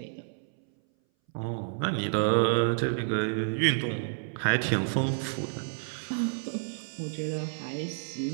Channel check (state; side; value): silent; left; 58 dB below the other